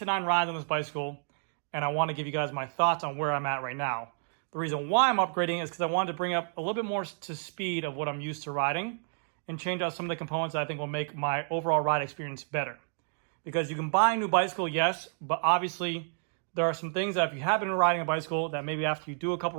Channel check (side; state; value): left; silent; digital silence